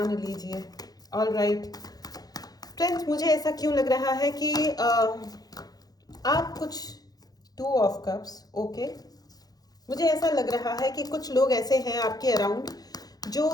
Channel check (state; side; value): late; right; 0.19 ms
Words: लीजिए। ऑल राइट फ्रेंड्स, मुझे ऐसा क्यों लग रहा है कि आप कुछ टू ऑफ कप्स, ओके। मुझे ऐसा लग रहा है कि कुछ लोग ऐसे हैं आपके अराउंड जो